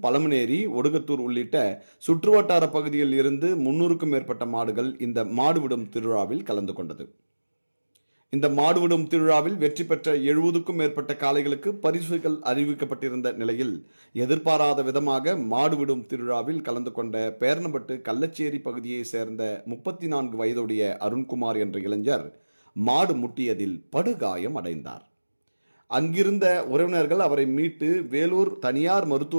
பழமனேரி, ஒடுகத்தூர் உள்ளிட்ட சுற்றுவட்டார பகுதியில் இருந்து 300க்கும் மேற்பட்ட மாடுகள் இந்த மாடு விடும் திருவிழாவில் கலந்து கொண்டது. இந்த மாடுவிடும் திருவிழாவில் வெற்றி பெற்ற 70க்கும் மேற்பட்ட காளைகளுக்கு பரிசுகள் அறிவிக்கப்பட்டிருந்த நிலையில் எதிர்பாராத விதமாக மாடுவிடும் திருவிழாவில் கலந்து கொண்ட பேர்ணம்பட்டு கள்ளச்சேரி பகுதியை சேர்ந்த 34 வயதுடைய அருண்குமார் என்ற இளைஞர் மாடு முட்டியதில் படுகாயம் அடைந்தார். அங்கிருந்த உறவினர்கள் அவரை மீட்டு வேலூர் தனியார்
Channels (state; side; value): inverted; both; correlation -1.00